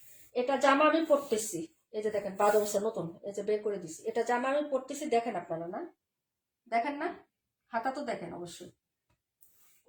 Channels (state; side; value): identical; both; correlation 1.00